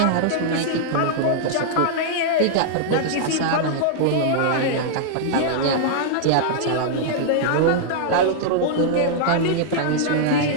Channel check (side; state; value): both; different; correlation -0.01